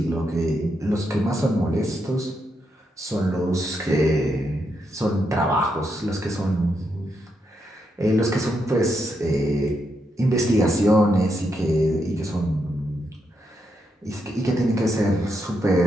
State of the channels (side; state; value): both; normal; correlation 0.81